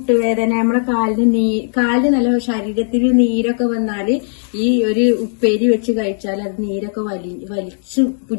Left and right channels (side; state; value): right; silent; digital silence